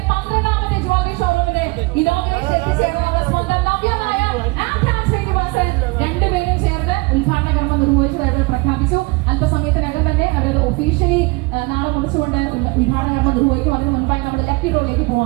12ാമത്തെ ജ്വല്ലറി ഷോറൂമിന്റെ ഇനോഗ്രേഷൻ എത്തിച്ചേർന്ന സ്വന്തം നവ്യമായ ശ്രീനിവാസൻ രണ്ടുപേരും ചേർന്ന് ഉദ്ഘാടന കർമ്മം നിർവഹിച്ചതായിട്ട് പ്രഖ്യാപിച്ചു. അല്പസമയത്തിനകം തന്നെ അവരത് ഒഫീഷ്യലി നാളെ കുറിച്ചുകൊണ്ട് ഉദ്ഘാടന കർമ്മം നിർവഹിക്കും. അതിന് മുൻപായി നമ്മൾ ലക്കി ഡ്രോയിലേക്ക്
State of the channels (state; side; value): quieter; left; 25.6 dB